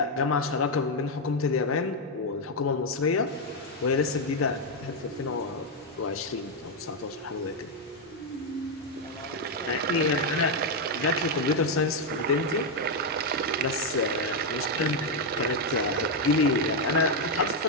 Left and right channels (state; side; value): normal; both; correlation 0.02